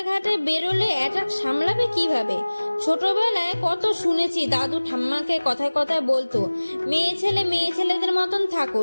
বেরোলে অ্যাটাক সামলাবে কিভাবে? ছোটবেলায় কত শুনেছি দাদু ঠাম্মাকে কথায় কথায় বলতো, মেয়ে ছেলেদের মতন থাকো,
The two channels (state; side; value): inverted; both; correlation -1.00